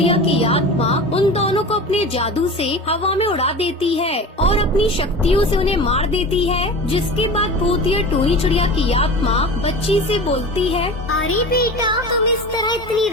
की आत्मा उन दोनों को अपने जादू से हवा में उड़ा देती है और अपनी शक्तियों से उन्हें मार देती है। जिसके बाद भूतिया टूनी चिड़िया की आत्मा बच्ची से बोलती है, अरे बेटा, तुम इस तरह इतनी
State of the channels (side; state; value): both; normal; correlation 0.33